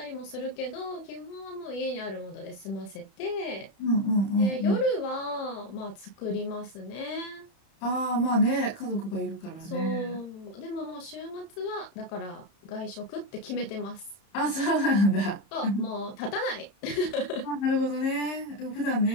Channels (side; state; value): right; late; 31 ms